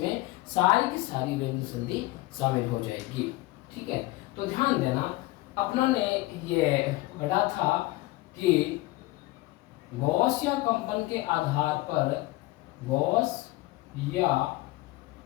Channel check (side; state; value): right; quieter; 19.4 dB